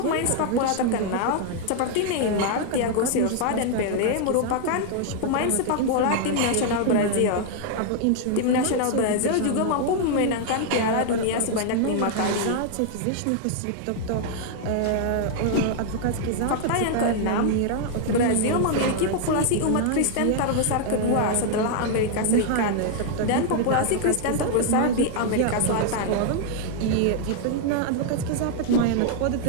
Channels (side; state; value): both; different; correlation 0.00